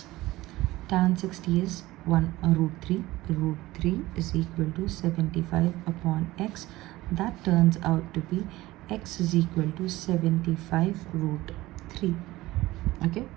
Tan 60 is root 3. Root 3 is equal to 75 upon x. That turns out to be x is equal to 75 root 3. Okay,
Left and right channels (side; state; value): left; quieter; 18.0 dB